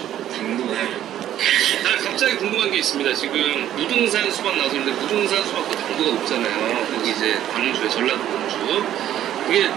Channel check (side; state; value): left; quieter; 11.6 dB